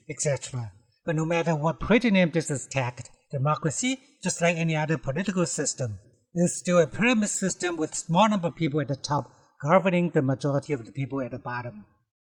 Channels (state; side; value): identical; both; correlation 1.00